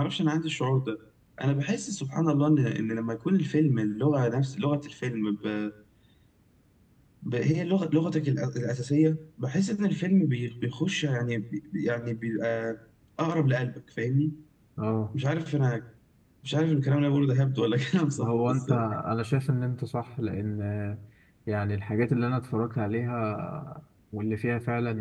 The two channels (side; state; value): both; identical; correlation 1.00